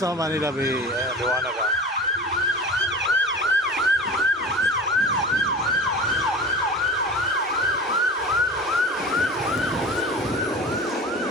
Manila Bay. Ayan, liwanag, ha?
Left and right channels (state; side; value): normal; both; correlation 0.35